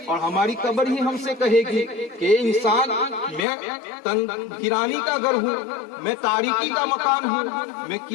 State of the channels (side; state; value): right; drops out; at 3.4 s